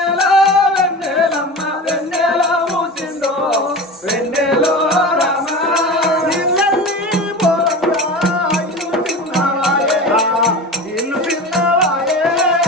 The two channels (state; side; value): normal; both; correlation 0.30